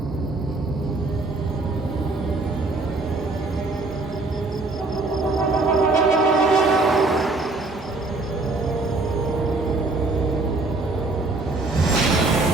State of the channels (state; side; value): quieter; left; 3.3 dB